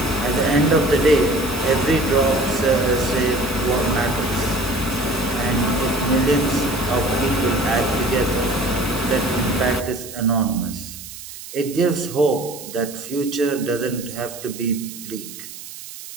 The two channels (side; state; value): right; noise; hiss, 13 dB below the sound